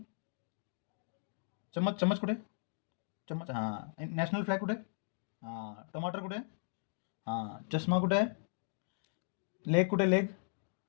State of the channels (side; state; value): right; silent; digital silence